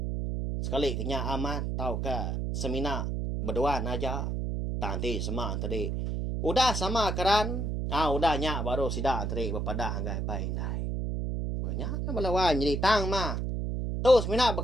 Sekali kenya amat, tahu ke semina berdua aja. Nanti semua tadi. Udah sama keran. Udah nyak baru sidak tadi berpadah anggai paindai. Banyak melawan jadi tang mah. Tu semina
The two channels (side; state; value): right; noise; hum, 1 dB below the sound